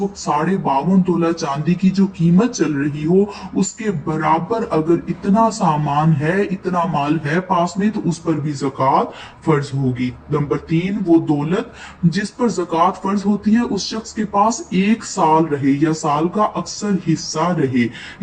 वक्त 52.5 तोला चांदी की जो कीमत चल रही हो उसके बराबर अगर इतना सामान है, इतना माल है पास में, तो उस पर भी ज़कात फर्ज होगी। नंबर 3, वो दौलत जिस पर ज़कात फर्ज होती है उस शख्स के पास 1 साल रहे या साल का अक्सर हिस्सा रहे।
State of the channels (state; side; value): identical; both; correlation 1.00